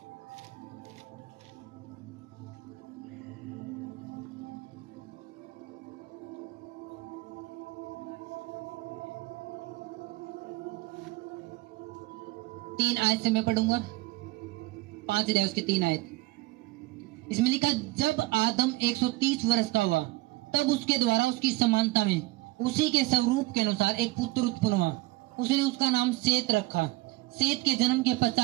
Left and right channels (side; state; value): left; quieter; 20.8 dB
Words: तीन आयत से मैं पढ़ूंगा। 5 अध्याय उसके 3 आयत। इसमें लिखा, जब आदम 130 वर्ष का हुआ तब उसके द्वारा उसकी समानता में उसी के स्वरूप के अनुसार एक पुत्र उत्पन्न हुआ। उसने उसका नाम सेत रखा। सेत के जन्म के